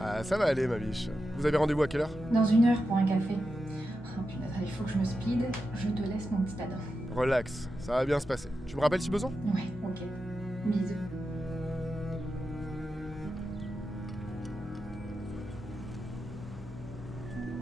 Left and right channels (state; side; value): normal; both; correlation 0.89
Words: ça va aller, ma biche. Vous avez rendez-vous à quelle heure? Dans 1 heure pour un café. Oh putain, il faut que je me speed. Je te laisse mon petit Adam. Relax, ça va bien se passer. Tu me rappelles si besoin? Ouais, ok. Bisous.